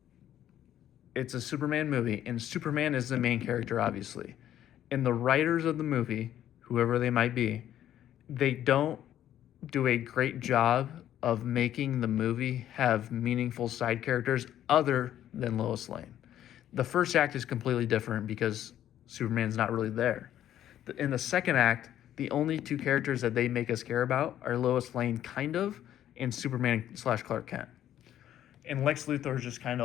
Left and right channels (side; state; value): right; quieter; 11.6 dB